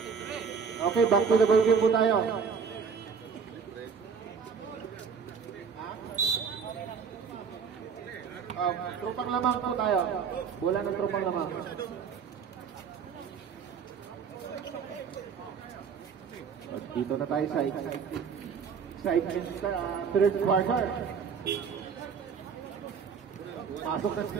Okay, back to the ball game po tayo. Trupang lamang po tayo. Bola ng trupang lamang. Dito na tayo sa excitement third quarter. Pasok na si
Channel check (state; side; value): quieter; left; 6.2 dB